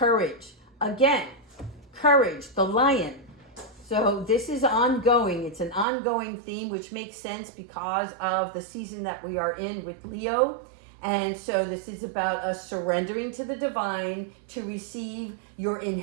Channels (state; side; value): drops out; left; at 5.9 s